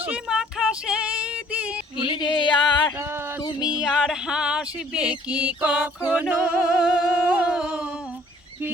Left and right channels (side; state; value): both; normal; correlation 0.58